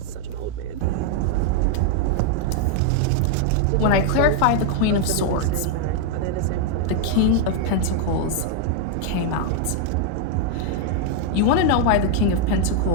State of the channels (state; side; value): different; both; correlation 0.00